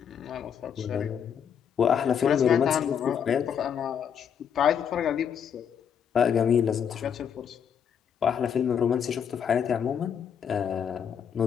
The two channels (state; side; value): quieter; right; 7.9 dB